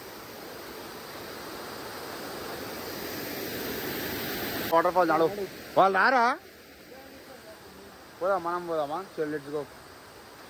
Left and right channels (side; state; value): both; identical; correlation 1.00